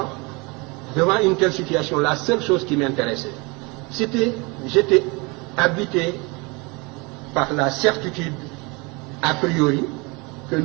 devant une telle situation, la seule chose qui m'intéressait, j'étais habité par la certitude, a priori, que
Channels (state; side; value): quieter; left; 27.8 dB